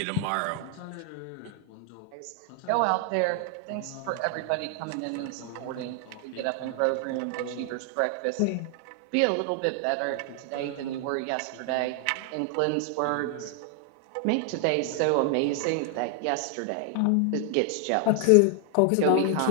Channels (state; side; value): different; both; correlation 0.00